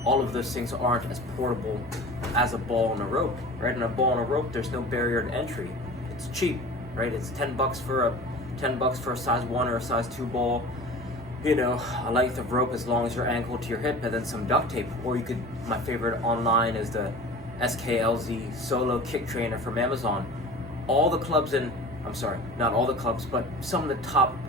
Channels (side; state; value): both; normal; correlation 0.38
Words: all of those things aren't as portable as a ball and a rope, right? And a ball and a rope, there's no barrier to entry. It's cheap, right? It's $10 for a size 1 or a size 2 ball, a length of rope as long as your ankle to your hip, and then some duct tape. Or you could, my favorite online is the SKLZ Solo Kick Trainer from Amazon. All the clubs not all the clubs, but some of the top